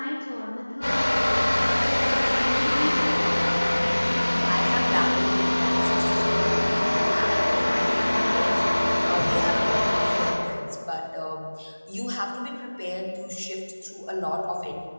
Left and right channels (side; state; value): both; inverted; correlation -1.00